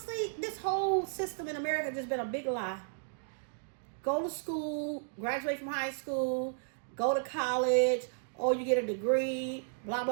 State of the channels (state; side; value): silent; left; digital silence